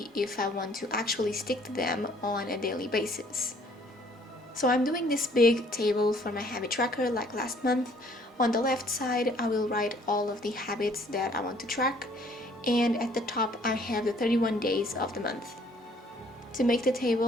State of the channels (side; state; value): both; normal; correlation 0.60